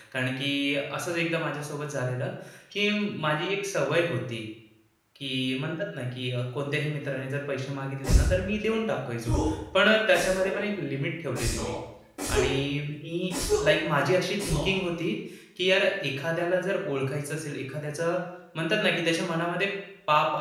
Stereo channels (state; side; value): identical; both; correlation 1.00